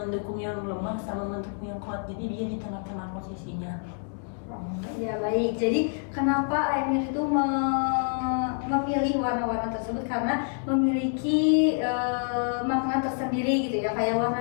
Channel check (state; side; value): silent; right; 60 dB below the other